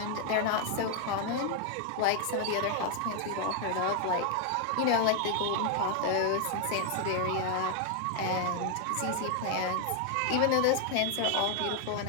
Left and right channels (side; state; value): both; different; correlation 0.00